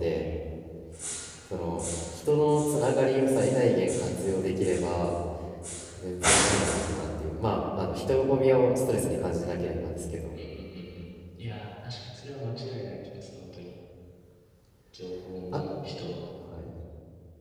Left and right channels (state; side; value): identical; both; correlation 1.00